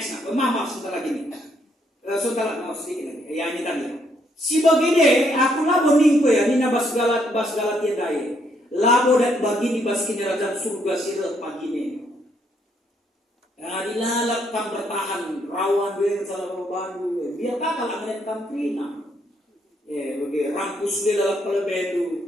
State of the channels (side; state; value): both; normal; correlation 0.72